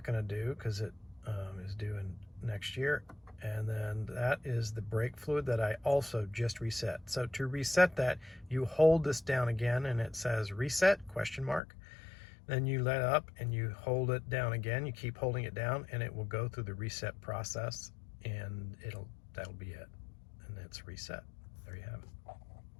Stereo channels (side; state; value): right; drops out; at 11.6 s